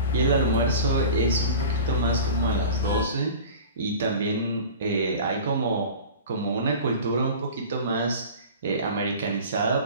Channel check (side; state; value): both; inverted; correlation -0.37